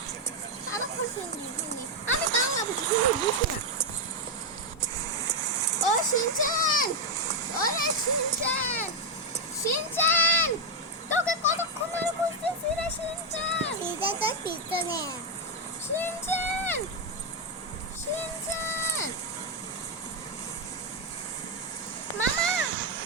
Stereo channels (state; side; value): normal; both; correlation 0.02